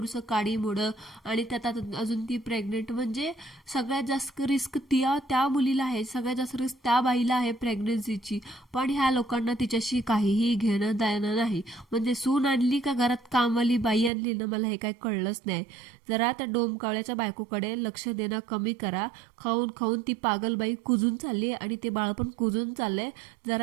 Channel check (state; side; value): drops out; left; at 14.1 s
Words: काडी मोडं, आणि त्यात अजून ती प्रेग्नेंट. म्हणजे सगळ्यात जास्त रिस्क त्या मुलीला आहे, सगळ्यात जास्त रिस्क त्या बाईला आहे प्रेग्नन्सीची. पण ह्या लोकांना तिच्याशी काहीही घेणं देणं नाही. म्हणजे सून आणली का घरात कामवाली बाई आणली ना, मला हे काही कळलंच नाही. जरा त्या डोमकावळ्याच्या बायकोकडे लक्ष देणं कमी करा. खाऊन ती पागलबाई कुजून चालली आणि ते बाळ पण कुजून चाललंय.